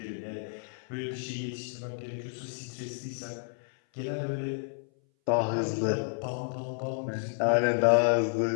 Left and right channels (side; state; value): right; silent; 57 dB below the other